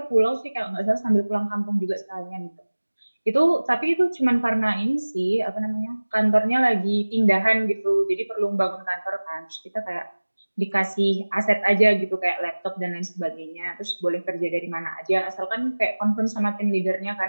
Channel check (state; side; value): inverted; both; correlation -1.00